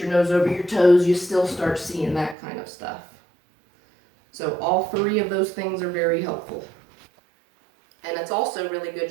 nose over your toes, you still start seeing that kind of stuff. So all 3 of those things are very helpful. And it's also really good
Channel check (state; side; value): drops out; left; at 2.4 s